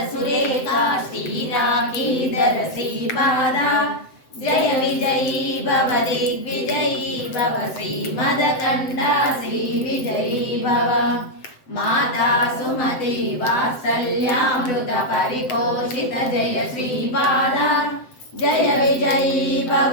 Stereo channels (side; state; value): right; late; 7.7 ms